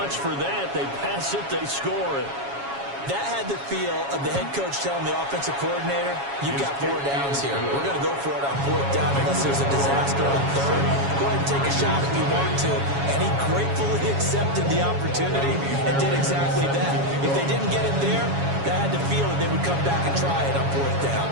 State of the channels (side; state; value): left; late; 7.2 ms